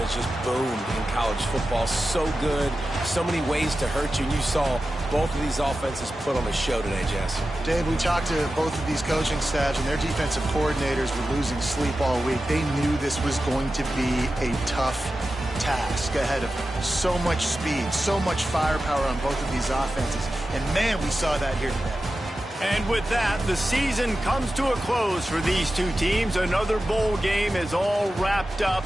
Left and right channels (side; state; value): both; normal; correlation 0.93